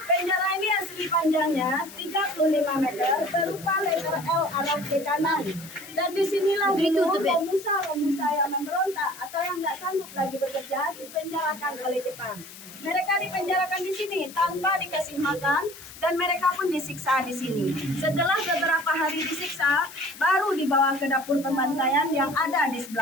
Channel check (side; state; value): left; noise; hiss, 16 dB below the sound